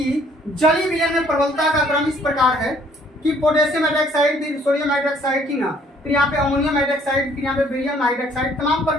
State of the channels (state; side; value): normal; both; correlation 0.61